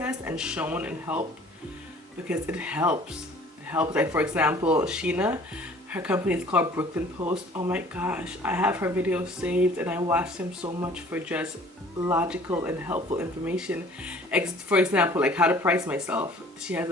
and shown and helped, because it helps. It helps. Like, for example, Sheena, her company is called Brooklyn Post. Oh my gosh, I have her videos saved and I watch them so much for just logical and helpful information. For example, like how to price myself. She has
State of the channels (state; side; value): normal; both; correlation 0.51